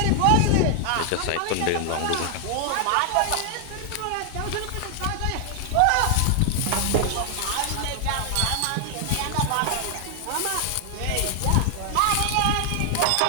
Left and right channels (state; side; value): different; both; correlation 0.00